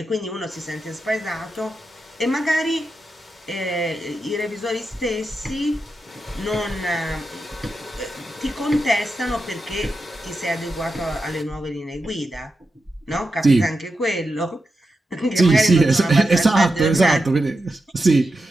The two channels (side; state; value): both; normal; correlation 0.89